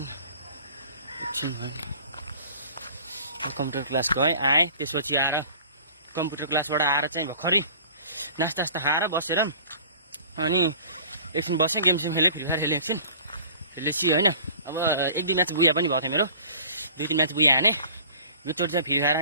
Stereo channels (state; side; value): inverted; both; correlation -0.46